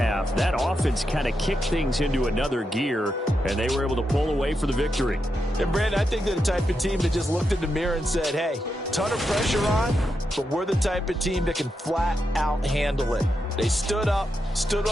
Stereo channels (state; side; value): normal; both; correlation 0.85